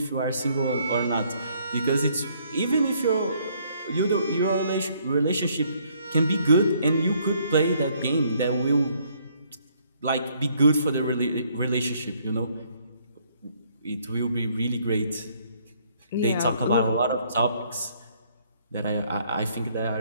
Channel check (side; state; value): both; inverted; correlation -0.66